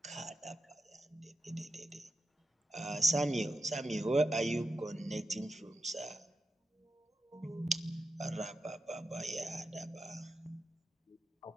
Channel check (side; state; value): both; normal; correlation 0.88